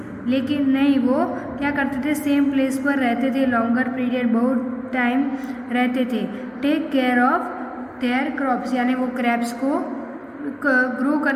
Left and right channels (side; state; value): both; identical; correlation 1.00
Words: लेकिन नहीं, वो क्या करते थे, सेम प्लेस पर रहते थे, लॉन्गर पीरियड, बहुत टाइम रहते थे। Take care of their crops, यानी वो क्रॉप्स को ग्रो